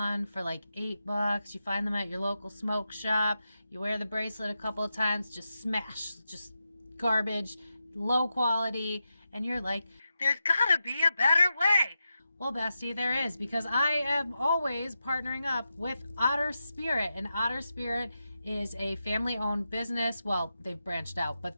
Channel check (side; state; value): both; inverted; correlation -0.89